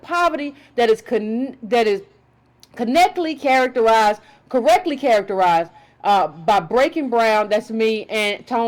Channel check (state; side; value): identical; both; correlation 1.00